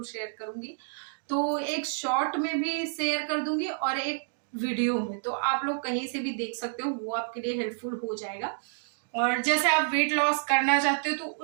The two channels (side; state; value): left; silent; digital silence